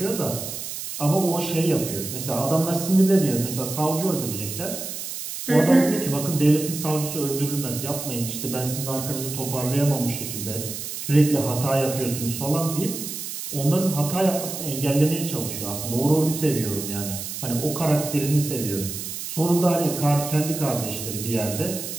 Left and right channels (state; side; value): noise; right; hiss, 7 dB below the sound